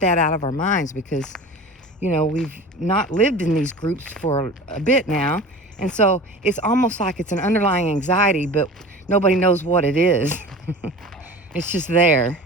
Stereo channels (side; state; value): both; normal; correlation 0.37